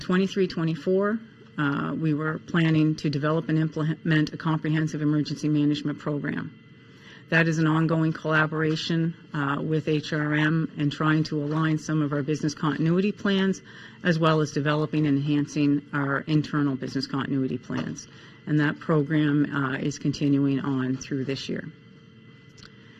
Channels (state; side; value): identical; both; correlation 1.00